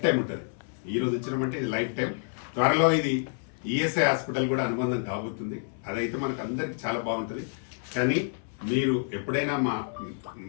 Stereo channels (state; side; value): silent; right; 59 dB below the other